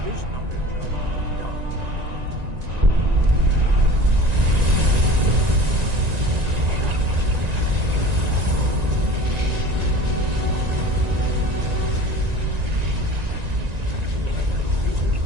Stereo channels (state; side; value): late; left; 1.9 ms